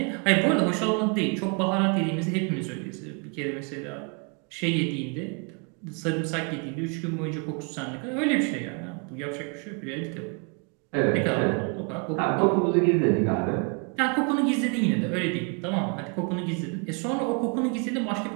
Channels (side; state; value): left; quieter; 35.4 dB